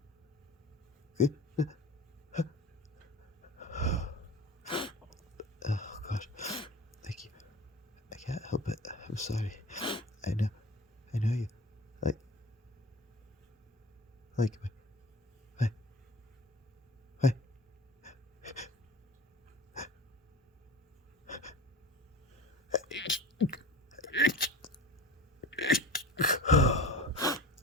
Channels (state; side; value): normal; both; correlation 0.36